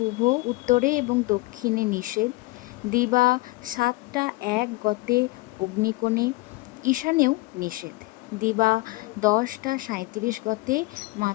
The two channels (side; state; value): right; quieter; 22.6 dB